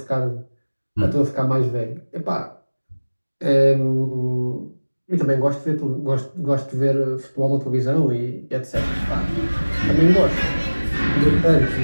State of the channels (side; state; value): both; inverted; correlation -1.00